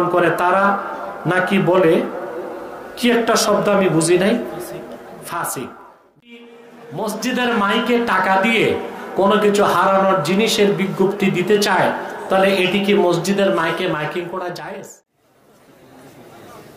করে তারা নাকি বলে কি একটা শব্দ আমি বুঝি নাই, ফাসিক। মসজিদের মাইকে টাকা দিয়ে কোনো কিছু হারানোর জিনিসের বিজ্ঞপ্তি দিতে চায়, তাহলে এটি কি মসজিদের মাইকে মাইকিং করা জায়েজ?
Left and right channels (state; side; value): identical; both; correlation 1.00